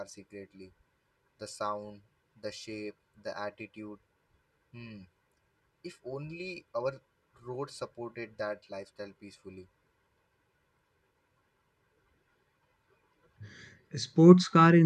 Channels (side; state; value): both; identical; correlation 1.00